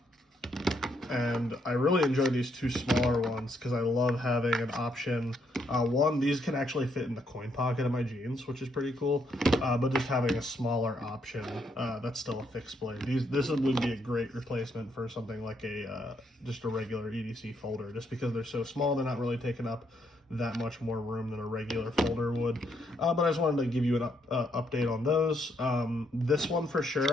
And I really enjoy these 2 smaller ones because I love having an option. One, these can actually fit in the coin pocket of my jeans, which is pretty cool. But just having a smaller option that's still a fixed blade. This would be a great replacement for something like just a regular EDC folder, just because they're so small, they're not really taking up that much more room than a regular folder would. But I just wanted to give you an update on those. This one for sure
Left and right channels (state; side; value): normal; both; correlation 0.74